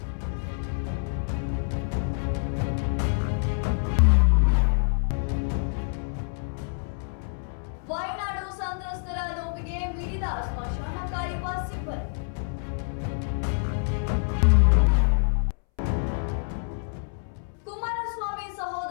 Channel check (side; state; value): right; silent; 60 dB below the other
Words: ವಯನಾಡು ಸಂತ್ರಸ್ತರ ನೋವಿಗೆ ಮಿಡಿದ ಸ್ಮಶಾನ ಕಾಯುವ ಸಿಬ್ಬಂದಿ. ಕುಮಾರಸ್ವಾಮಿ